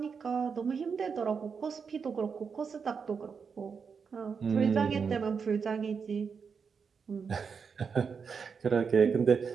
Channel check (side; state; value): left; quieter; 5.9 dB